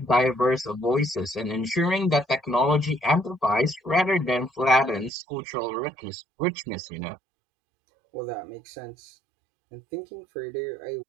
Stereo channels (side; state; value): left; drops out; at 5.1 s